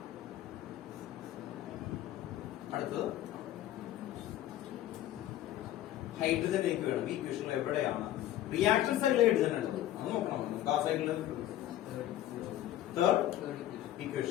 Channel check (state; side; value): quieter; right; 12.9 dB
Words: അടുത്തത് ഹൈഡ്രജൻ എനിക്ക് വേണം. ഈ ഇക്വേഷനിൽ എവിടെയാണ് റിയാക്ഷൻ സൈഡിൽ ഹൈഡ്രജൻ ഉള്ളത്? അത് നോക്കണം. നമുക്ക് ആ സൈഡിൽ തേർഡ്